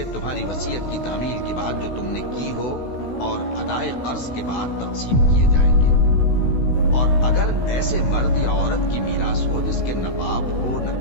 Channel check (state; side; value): late; right; 16 ms